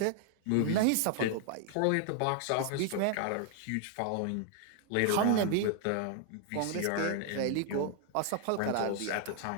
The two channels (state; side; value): different; both; correlation 0.00